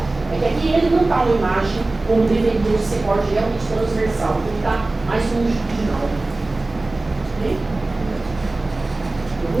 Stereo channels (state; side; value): quieter; left; 3.1 dB